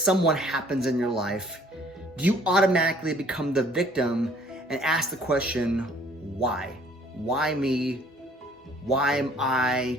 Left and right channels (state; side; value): normal; both; correlation 0.58